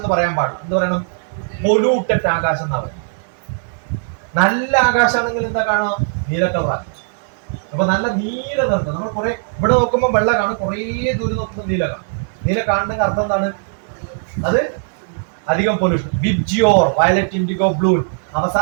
പറയാൻ പാടില്ല. എന്ത് പറയണം? പൊല്യൂട്ടഡ് ആകാശം എന്നാ പറയുന്നത്. നല്ല ആകാശമാണെങ്കിൽ എന്താ കാണാം? നീല കളറാണ്. അപ്പൊ നല്ല നീല നിറത്ത് നമ്മൾ കുറെ ഇവിടെ നോക്കുമ്പോൾ വെള്ള കാണും, കുറെ ദൂരം നോക്കുമ്പോൾ നീല കാണും. നീല കാണുന്നതിന്റെ അർത്ഥം എന്താണ്? അത് അധികം pollution. VIBGYOR, violet, IndiGo, blue,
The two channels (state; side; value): silent; left; digital silence